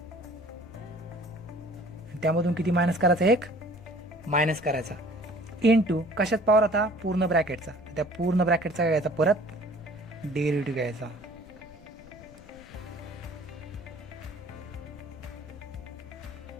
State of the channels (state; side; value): noise; left; rumble, 21 dB below the sound